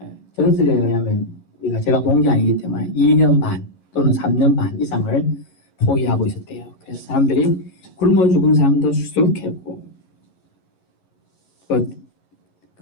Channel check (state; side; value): late; right; 11 ms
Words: 전설에 의하면 제가 본 게 아니기 때문에 2년 반 또는 3년 반 이상을 포위하고 있었대요. 그래서 사람들이 굶어 죽은 사람도 수두룩했고,